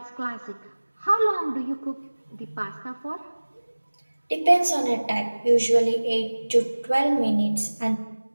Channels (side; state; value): both; inverted; correlation -1.00